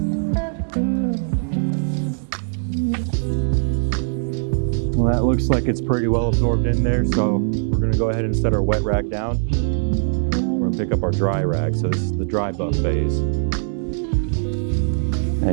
Well, that looks like it's pretty well absorbed in there, so we're gonna go ahead and set our wet rag down. We're gonna pick up our dry rag, so this is the dry buff phase.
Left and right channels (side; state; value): left; silent; digital silence